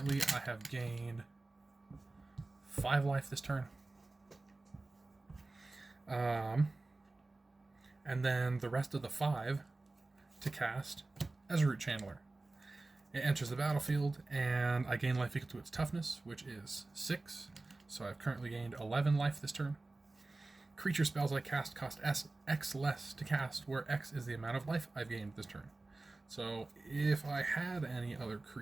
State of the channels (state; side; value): quieter; left; 3.2 dB